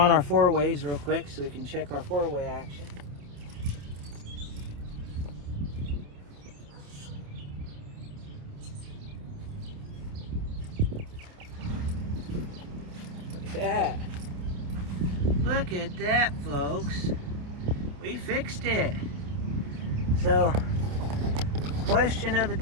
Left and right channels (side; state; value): left; late; 28 ms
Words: our 4-ways real quick so we can check our 4-way action. that. Look at that, folks. We fixed it. So, question of the